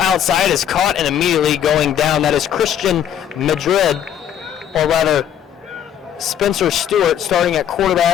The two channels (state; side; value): quieter; right; 9.6 dB